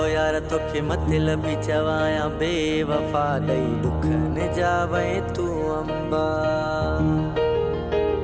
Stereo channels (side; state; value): both; identical; correlation 1.00